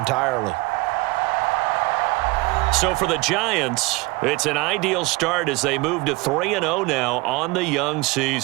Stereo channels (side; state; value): left; quieter; 23.6 dB